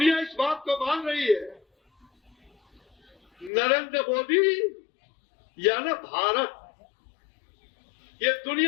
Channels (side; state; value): right; drops out; at 3.5 s